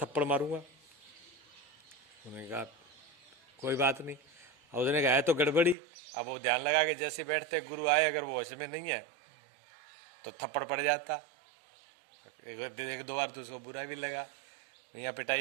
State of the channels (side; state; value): left; drops out; at 5.8 s